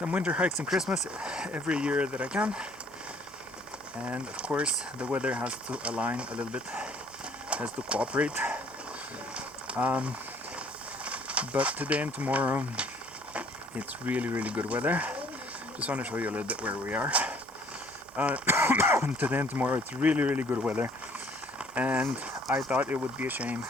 winter hikes and Christmas every year that I can. And of course the weather has to align a little bit, has to cooperate. But today and tomorrow it's really good weather. Just want to show you a little bit where we are. Today and tomorrow it's really good weather, and I thought it would be a shame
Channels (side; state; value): both; normal; correlation 0.59